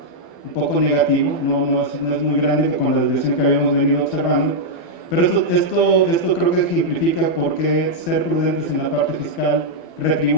un poco negativo, no es muy grande con la desviación que habíamos venido observando, pero esto creo que ejemplifica por qué ser prudentes en la parte fiscal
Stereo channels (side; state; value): right; late; 12 ms